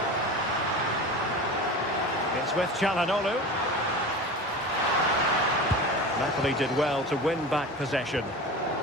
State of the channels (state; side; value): normal; both; correlation 0.32